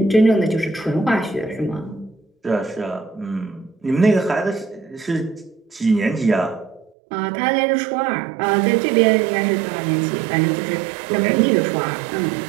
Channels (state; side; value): drops out; left; at 6.9 s